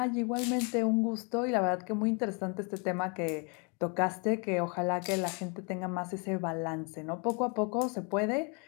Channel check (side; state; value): right; quieter; 34.4 dB